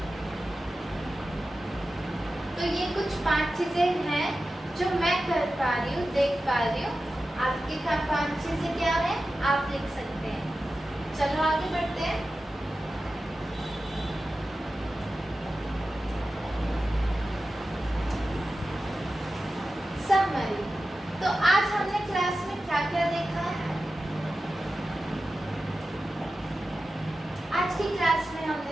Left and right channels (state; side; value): normal; both; correlation 0.93